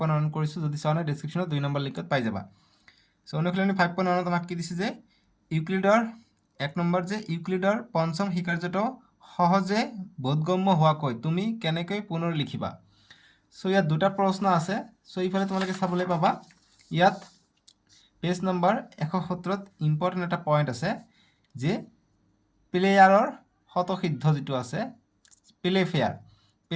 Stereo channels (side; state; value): both; identical; correlation 1.00